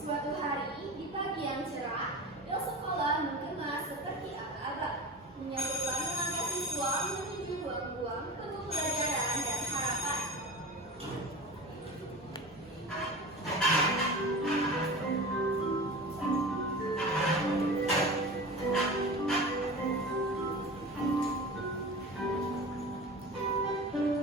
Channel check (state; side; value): normal; both; correlation 0.32